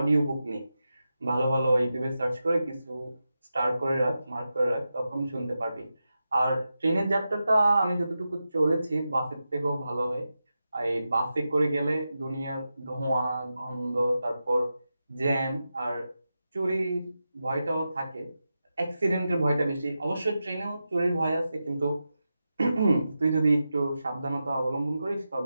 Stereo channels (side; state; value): both; inverted; correlation -0.90